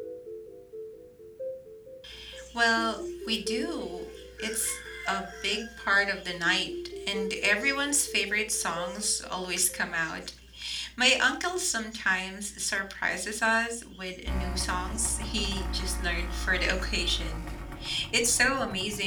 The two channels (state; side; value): identical; both; correlation 1.00